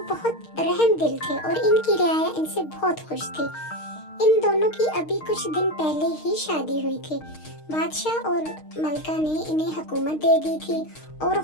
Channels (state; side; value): late; right; 6.5 ms